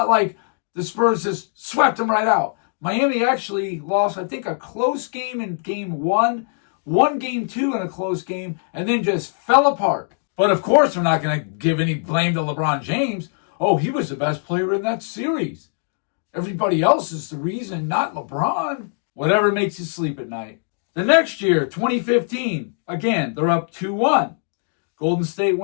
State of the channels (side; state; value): right; silent; digital silence